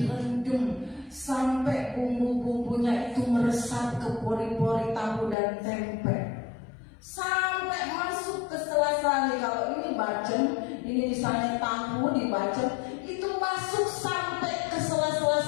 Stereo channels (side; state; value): right; drops out; at 5.4 s